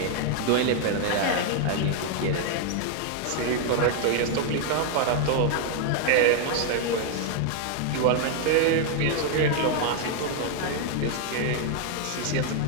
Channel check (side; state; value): both; different; correlation 0.00